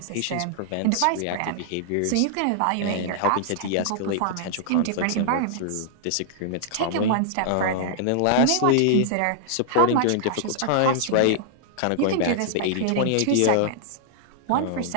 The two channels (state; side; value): different; both; correlation -0.01